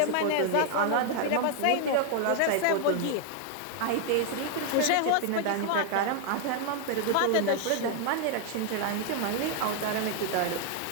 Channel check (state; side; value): different; both; correlation 0.00